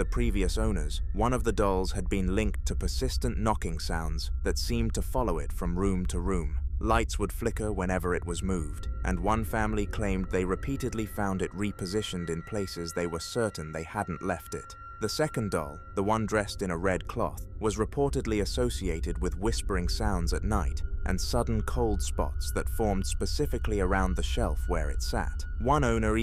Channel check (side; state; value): both; identical; correlation 1.00